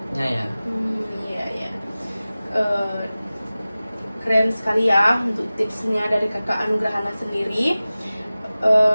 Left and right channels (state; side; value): inverted; both; correlation -0.97